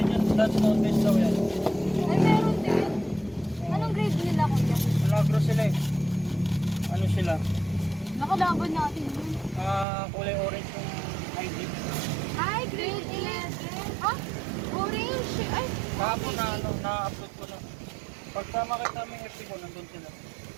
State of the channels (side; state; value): left; drops out; at 9.9 s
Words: niyan, dance contest daw yan. Ay, meron din. Anong grade nila, kuya? Malagro sila eh. Ano sila? Nakalaban natin yun. Kulay orange yung ID. Ay, grade 11. Ah? Orange. Ay, Kahapon na-upload ko na. Pagka makita mo yung FB ko, nandun sila.